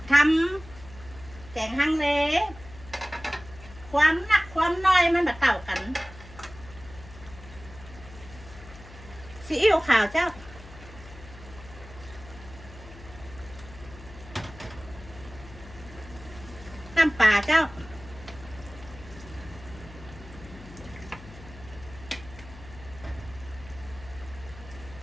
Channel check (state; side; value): noise; left; hum, 17 dB below the sound